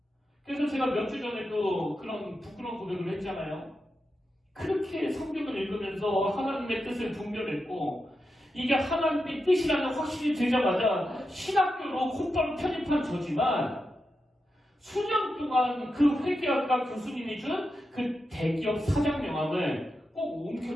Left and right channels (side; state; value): both; normal; correlation 0.88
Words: 그래서 제가 몇 주 전에도 그런 부끄러운 고백을 했잖아요. 그렇게 성경을 읽으면서 하나님의 뜻을 분별했고 이게 하나님의 뜻이라는 확신이 들자마자 신학교로 곧바로 편입한 저지만 수년 동안 그 회계학과 교수님이 준 그 대기업 사장 명함을 꼭